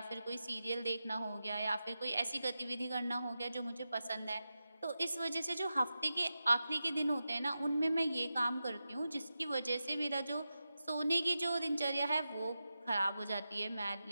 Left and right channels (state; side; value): inverted; both; correlation -0.91